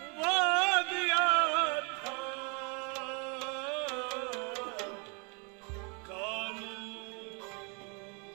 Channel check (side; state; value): left; quieter; 34.4 dB